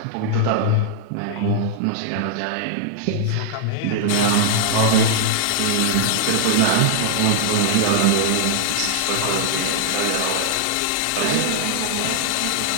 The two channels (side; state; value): both; different; correlation -0.01